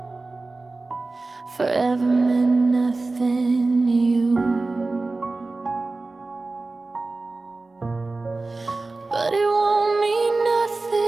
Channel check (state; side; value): quieter; left; 3.4 dB